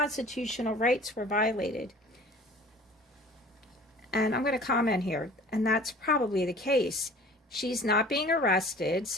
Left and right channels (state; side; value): normal; both; correlation 0.46